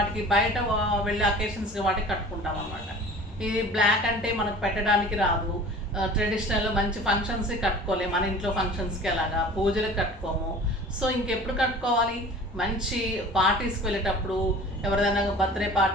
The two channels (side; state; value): both; normal; correlation 0.43